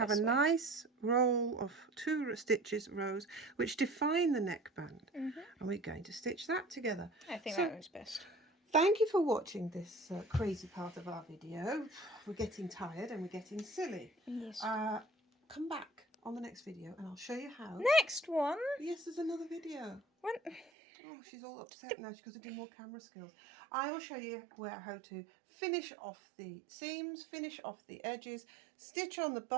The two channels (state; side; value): drops out; left; at 20.7 s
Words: a nice roll of 2 stitches, rows, which define the neckband. And we're going to stitch that together. I think that was best. Thank you for watching this crazy part of our video. We're getting tired and we're getting silly. Yes. Come back on the next video and I'll show you how. Next one? Yes, there's another video. When? Oh, she's all upset now. She's got to do more camera skills. I will show you how to finish off the seams, finish off the edges, stitch on the